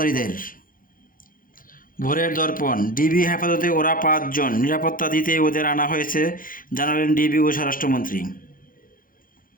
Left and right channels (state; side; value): late; right; 0.40 ms